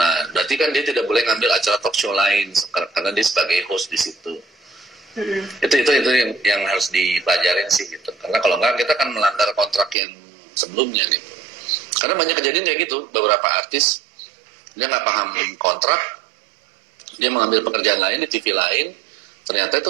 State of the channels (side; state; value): left; drops out; at 10.0 s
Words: berarti kan dia tidak boleh ngambil acara talk show lain karena dia sebagai host di situ. Itu yang harus dipelajarin sih gitu. Karena kalau enggak kita akan melanggar kontrak yang sebelumnya gitu. Karena banyak kejadian kayak gitu, beberapa artis dia nggak paham kontrak, dia mengambil pekerjaan lain di TV lain, ternyata